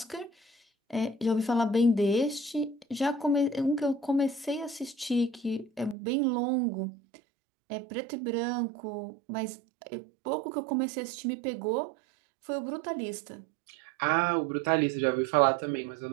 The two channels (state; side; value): drops out; left; at 6.0 s